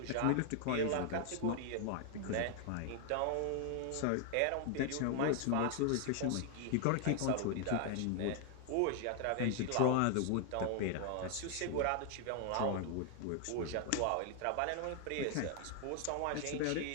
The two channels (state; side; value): different; both; correlation 0.00